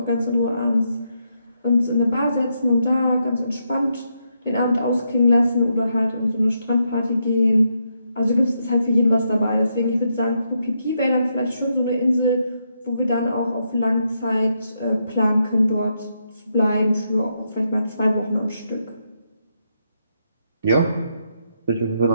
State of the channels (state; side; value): inverted; both; correlation -0.80